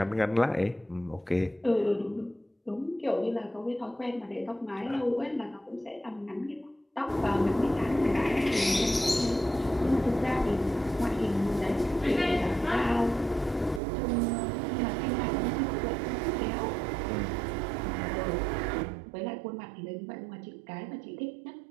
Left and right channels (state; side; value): drops out; left; at 13.8 s